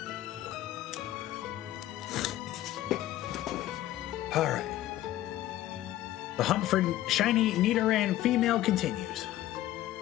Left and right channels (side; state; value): right; quieter; 14.2 dB